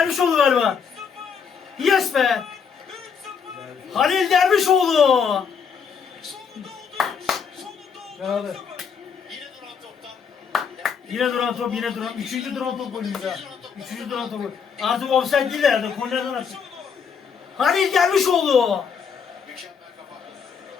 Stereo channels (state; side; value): quieter; right; 6.5 dB